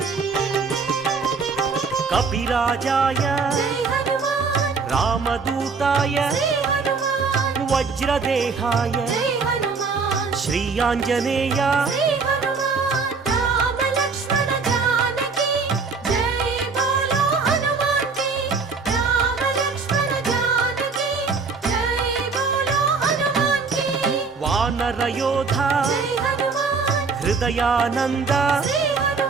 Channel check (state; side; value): quieter; left; 4.7 dB